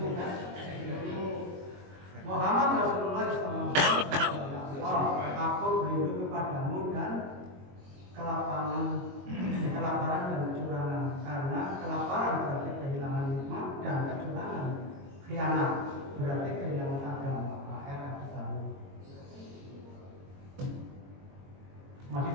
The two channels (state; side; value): late; left; 22 ms